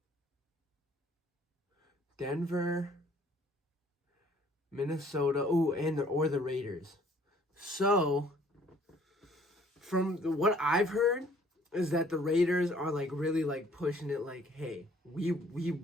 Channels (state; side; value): normal; both; correlation 0.59